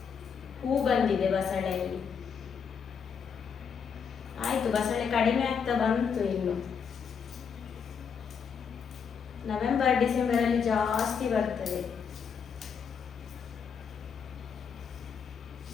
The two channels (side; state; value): right; quieter; 6.6 dB